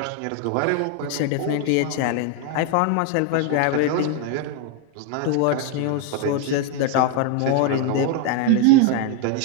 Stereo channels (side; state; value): both; different; correlation 0.01